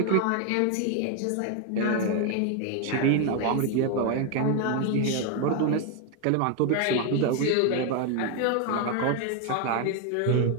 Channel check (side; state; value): both; different; correlation 0.01